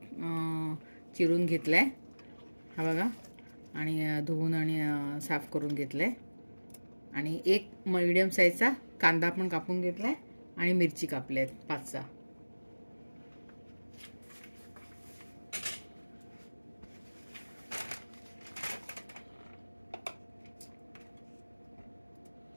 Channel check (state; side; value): inverted; both; correlation -1.00